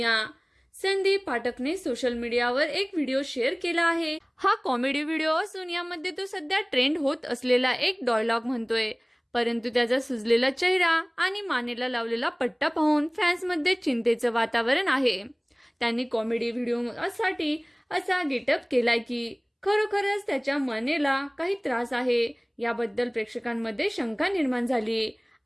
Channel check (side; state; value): both; identical; correlation 1.00